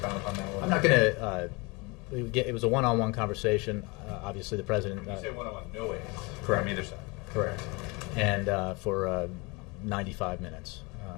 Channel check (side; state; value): right; quieter; 27.4 dB